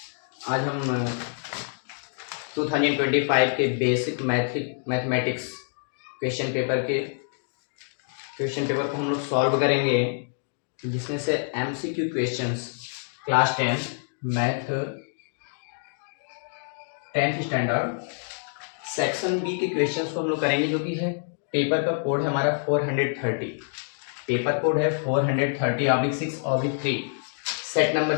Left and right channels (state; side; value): silent; right; digital silence